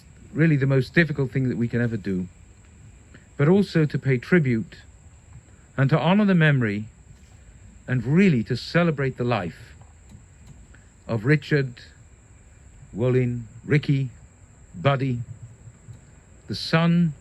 really the most difficult thing that we can ever do, but also to pay tribute and to honor the memory and really to celebrate the life of Richard, Wolin, Ricky, Buddy, the son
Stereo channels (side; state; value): both; identical; correlation 1.00